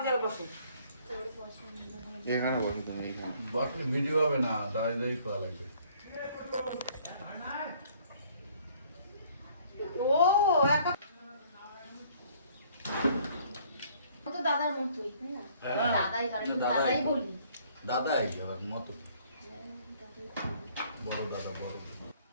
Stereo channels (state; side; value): inverted; both; correlation -0.60